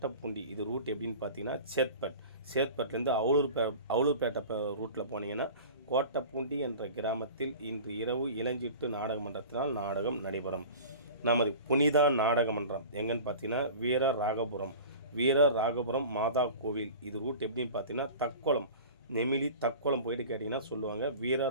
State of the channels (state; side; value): inverted; both; correlation -0.38